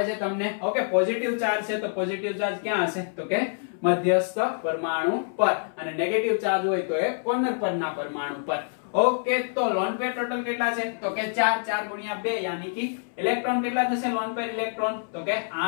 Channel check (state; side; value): silent; right; 61 dB below the other